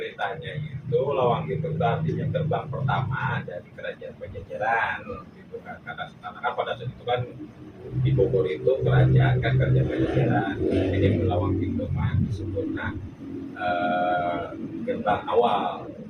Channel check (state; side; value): identical; both; correlation 1.00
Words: itu Lawang Gintung itu artinya gerbang pertama dari kerajaan Pajajaran gitu kan. Karena kan pada saat itu kan di Bogor itu kerajaan Pajajaran. Jadi Lawang Gintung mah disebutnya gerbang awal.